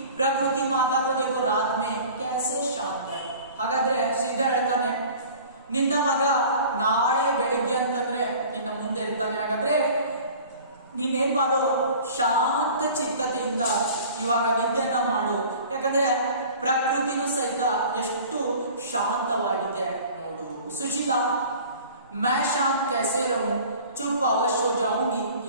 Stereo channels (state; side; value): inverted; both; correlation -0.44